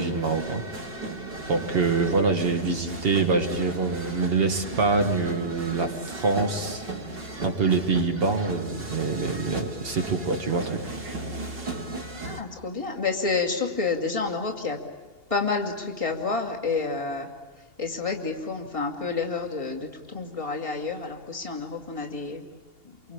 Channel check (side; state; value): left; late; 2.8 ms